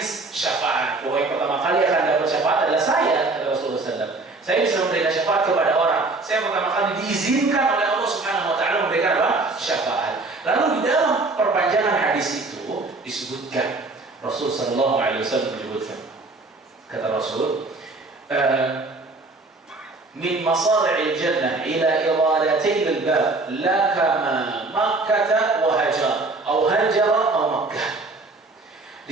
syafaat. Bahwa yang pertama kali akan dapat syafaat adalah saya, kata Rasulullah SAW. Saya bisa memberikan syafaat kepada orang. Saya pertama kali diizinkan oleh Allah Subhanahu Wa Taala memberikan apa? Syafaat. Lalu di dalam perpanjangan hadis itu disebutkan, Rasulullah SAW menyebutkan, kata Rasul, min masari'il jannah ila iradatain al-bab la kama Makkah wa Hajar atau Hajar atau Makkah.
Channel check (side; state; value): left; quieter; 3.4 dB